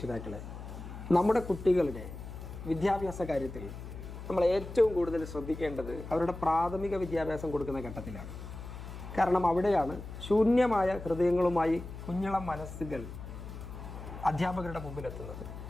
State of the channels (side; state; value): left; noise; hum, 11 dB below the sound